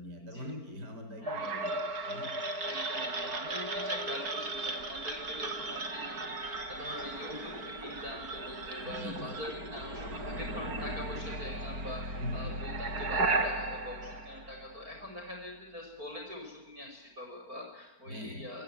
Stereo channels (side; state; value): left; late; 4.4 ms